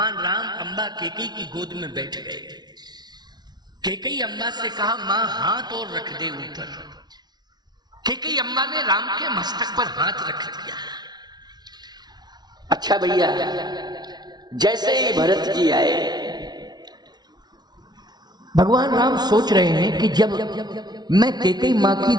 राम अम्बा केकई की गोद में बैठ गए। केकई अम्बा से कहा मां हाथ और रख दे ऊपर। केकई अम्बा ने राम के मस्तक पर हाथ रख दिया। अच्छा भैया, जैसे ही भरत जी आए, भगवान राम सोच रहे हैं कि जब मैं केकई मां की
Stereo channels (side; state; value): left; late; 0.20 ms